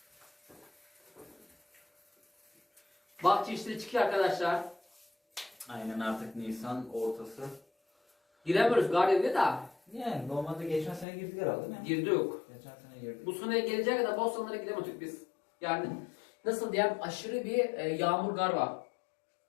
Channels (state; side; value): drops out; right; at 11.1 s